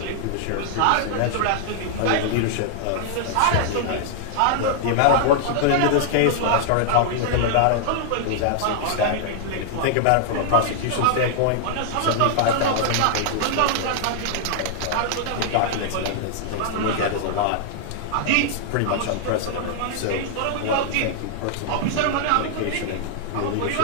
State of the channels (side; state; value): both; different; correlation -0.01